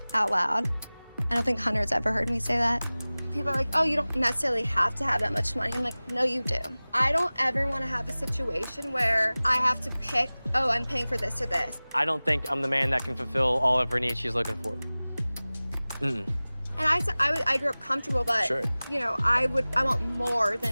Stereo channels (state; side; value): inverted; both; correlation -0.99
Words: out loud. I don't think Hunter's ever heard me say that. People are like, oh, you don't necessarily have to have that much money. I'm like, no, you do. I don't ever want to have a situation where I have to pick, oh, I'm paying for this or this. I don't think I'm the man that can fulfill all of her needs she's looking for. Mm-mm. And I grew up comfortable, but Sure. you know, I want more